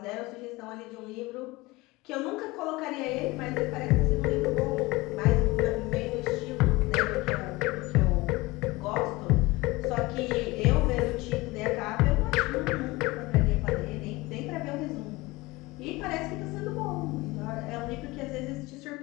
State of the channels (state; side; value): quieter; right; 21.7 dB